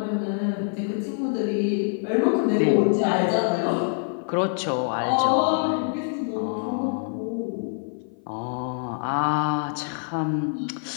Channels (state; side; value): silent; right; 55 dB below the other